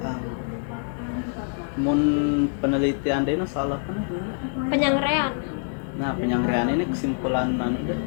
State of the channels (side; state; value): right; silent; 58 dB below the other